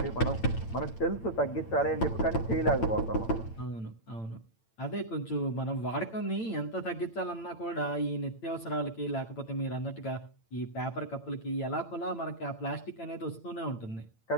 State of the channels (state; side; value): late; right; 8.9 ms